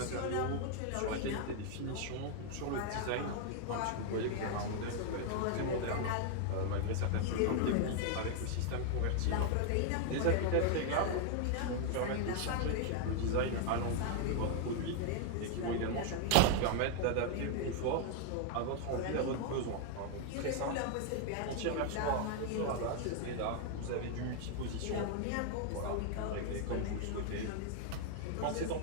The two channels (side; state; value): both; different; correlation 0.00